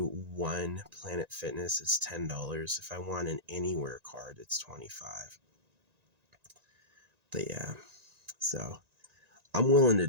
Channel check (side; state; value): left; late; 1.9 ms